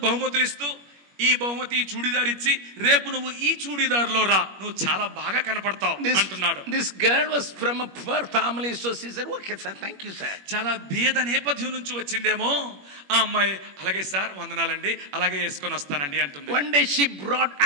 బహుమతులు ఇస్తూ. ఈ బహుమతి చూడిదార్ ఇచ్చి రేపు నువ్వు ఈ చూడిదార్లో రా, నువ్వు చాలా బాగా కనపడతావు అంటున్నాడు. This girl was from a poor family, so she said, "Okay sir, thank you sir." చాలా బీద నేపథ్యం నుంచి వచ్చిందేమో ఆ అమ్మాయి. అలాగే సార్, వందనాలండి, అలాగే వేసుకొని వస్తానండి అంటుంది. One day she brought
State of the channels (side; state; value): left; late; 21 ms